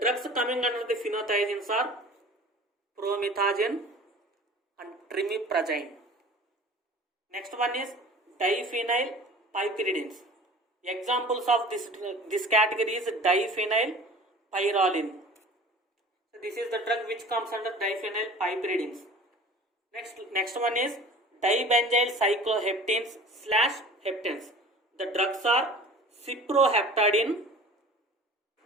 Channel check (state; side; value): normal; both; correlation 0.42